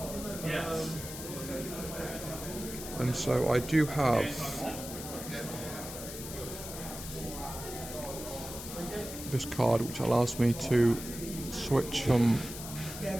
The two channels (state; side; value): noise; left; hiss, 10 dB below the sound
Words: And so I do have this card which allows me to switch from